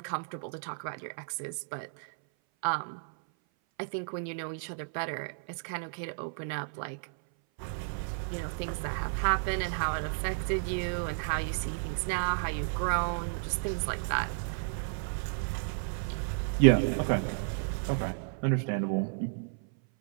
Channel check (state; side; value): silent; left; 56 dB below the other